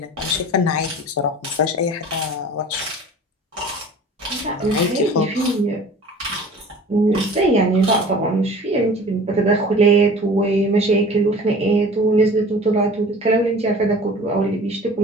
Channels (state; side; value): normal; both; correlation 0.43